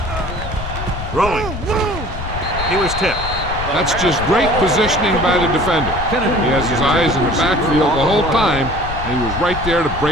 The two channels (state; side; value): noise; left; rumble, 7 dB below the sound